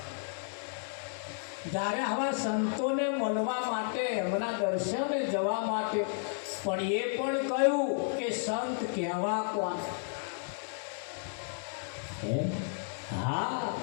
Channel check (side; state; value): right; silent; digital silence